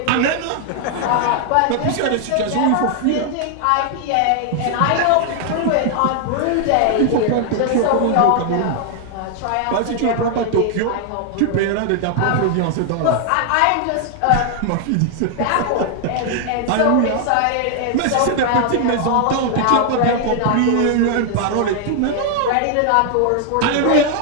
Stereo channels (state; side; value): different; both; correlation 0.00